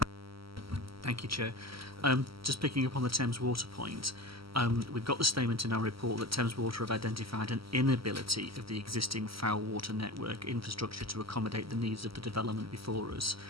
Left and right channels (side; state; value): left; late; 0.75 ms